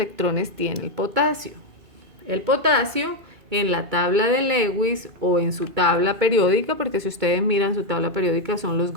tiene el potasio? El potasio en la tabla de Lewis o en su tabla periódica, porque si ustedes miran su tabla periódica son los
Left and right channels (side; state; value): left; late; 2.3 ms